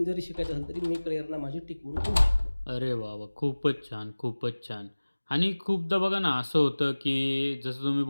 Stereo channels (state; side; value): inverted; both; correlation -1.00